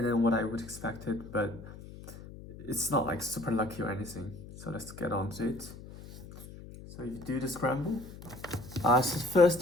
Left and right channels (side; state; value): left; noise; hum, 15 dB below the sound